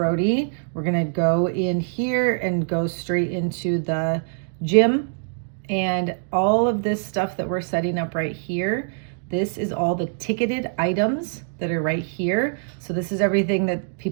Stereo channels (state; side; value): silent; left; digital silence